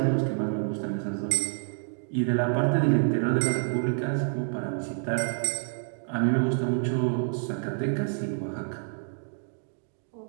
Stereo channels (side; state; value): left; silent; 59 dB below the other